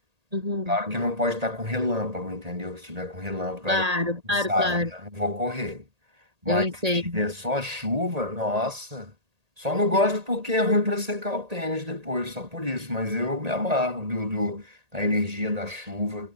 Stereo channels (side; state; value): left; late; 1.8 ms